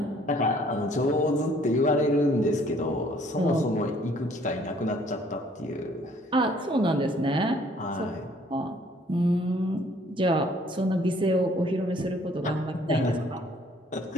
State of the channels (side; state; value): both; normal; correlation 0.60